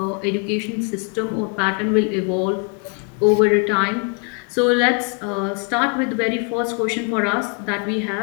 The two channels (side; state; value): right; quieter; 37.1 dB